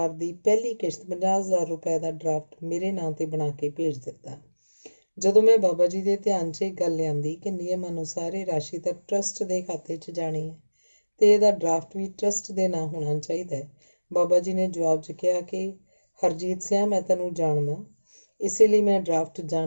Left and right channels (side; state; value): both; inverted; correlation -1.00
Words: ਦੀ ਪਹਿਲੀ ਕਿਸ਼ਤ 50,000 ਰੁਪਏ ਦਾ ਡਰਾਫਟ ਮੇਰੇ ਨਾਂ ਤੇ ਬਣਾ ਕੇ ਭੇਜ ਦਿੱਤਾ। ਜਦੋਂ ਮੈਂ ਬਾਬਾ ਜੀ ਦੇ ਧਿਆਨ 'ਚ ਇਹ ਗੱਲ ਲਿਆਂਦੀ ਕਿ ਨਿਯਮ ਅਨੁਸਾਰ ਇਹ ਰਾਸ਼ੀ ਤਾਂ ਟਰੱਸਟ ਦੇ ਖਾਤੇ 'ਚ ਜਾਣੀ ਹੈ ਤੇ ਇਹਦਾ ਡਰਾਫਟ ਵੀ ਟਰੱਸਟ ਦੇ ਨਾਂ ਹੋਣਾ ਚਾਹੀਦਾ ਹੈ, ਬਾਬਾ ਜੀ ਨੇ ਜਵਾਬ 'ਚ ਕਿਹਾ ਕਿ ਹਰਜੀਤ ਸਿਆਂ, ਮੈਂ ਤੈਨੂੰ ਜਾਣਦਾ, ਇਸੇ ਲਈ ਮੈਂ ਡਰਾਫਟ